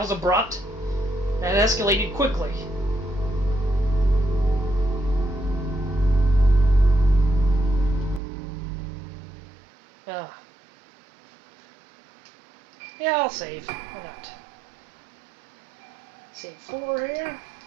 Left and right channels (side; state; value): left; drops out; at 8.2 s